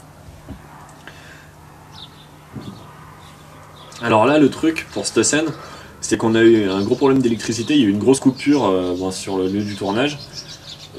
Alors là, le truc pour cette scène, c'est qu'on a eu un gros problème d'électricité, il y a eu une grosse coupure bon, sur le lieu du tournage.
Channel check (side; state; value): both; identical; correlation 1.00